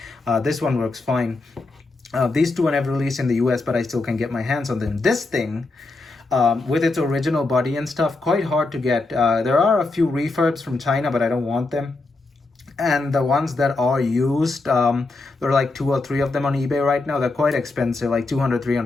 This one works fine. These two are never released in the US, but I still can get my hands on them. This thing, with its original body and stuff, quite hard to get. There are a few refurbs from China, but I don't want them. And the ones that are used, there are like 2 or 3 of them on eBay right now. They're quite expensive, like $200,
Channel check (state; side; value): quieter; right; 3.4 dB